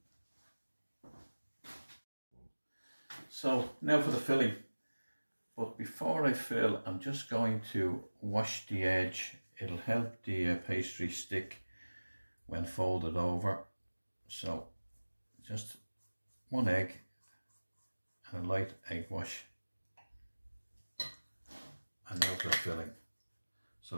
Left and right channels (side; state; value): both; inverted; correlation -1.00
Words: So now for the filling. But before I fill, I'm just going to wash the edge. It'll help the pastry stick when folded over. So just 1 egg and a light egg wash. And now for the filling.